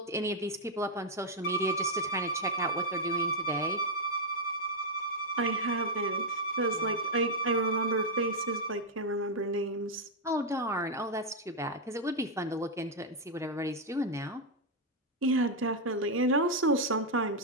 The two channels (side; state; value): both; normal; correlation -0.02